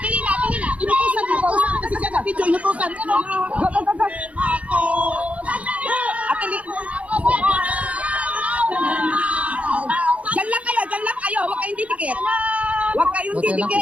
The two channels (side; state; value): left; late; 0.065 ms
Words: Inutusan kasi siya na video, inutusan. Atili. Walang